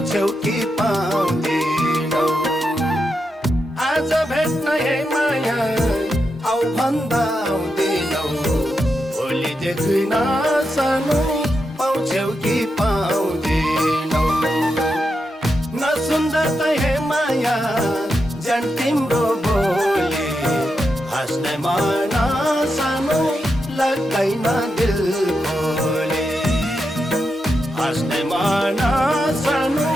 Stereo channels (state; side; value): normal; both; correlation 0.86